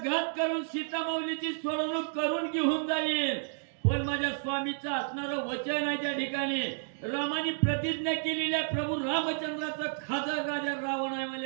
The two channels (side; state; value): left; silent; digital silence